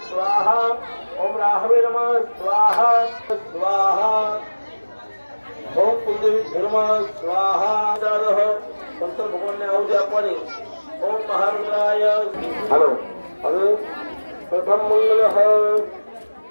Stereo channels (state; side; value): inverted; both; correlation -1.00